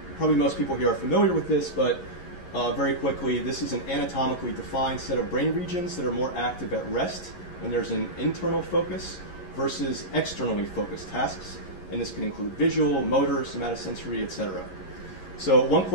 most people here are familiar with this, but very quickly, this is an anatomically defined set of brain regions that are more active at rest when there's an internal focus versus externally focused tasks, and this can include visual, motor, somatosensory, etc. So one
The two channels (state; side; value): late; right; 11 ms